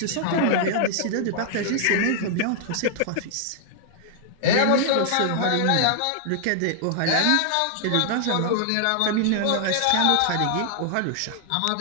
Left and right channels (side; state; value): both; different; correlation -0.01